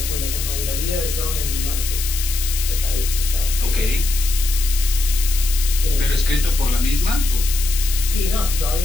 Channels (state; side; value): noise; left; hiss, 6 dB below the sound